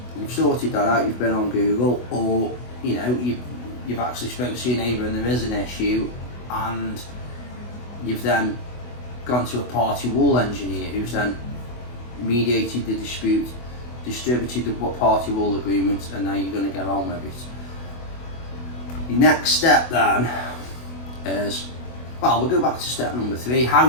you've sorted that out, you've been on Google, or you've actually spoken to your neighbour and there is an issue, and you've then gone to a party wall engineer who's then mediated the dispute, distributed the party wall agreement, and now you're going to get on with it. Your next step then is, we'll go back to step number 3. How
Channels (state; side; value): late; right; 24 ms